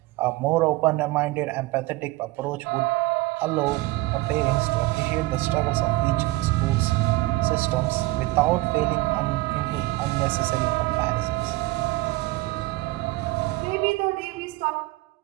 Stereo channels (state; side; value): quieter; left; 20.0 dB